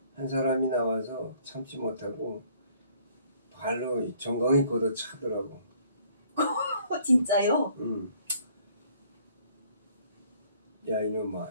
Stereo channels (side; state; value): both; inverted; correlation -0.60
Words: 한 사람이 나와서 참지 못하고 발로 정강이 걷어 차더라고. 진짜요? 야 이놈아,